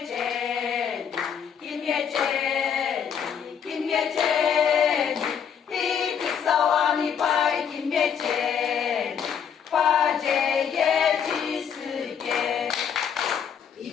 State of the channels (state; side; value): quieter; right; 7.8 dB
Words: 김예재 김예재 이 그 서환이 바이 김예재 화제의 지스게 이